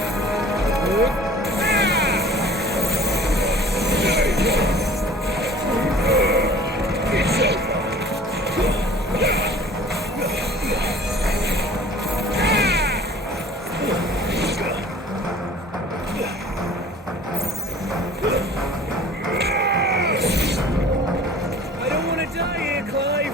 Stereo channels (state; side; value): normal; both; correlation 0.48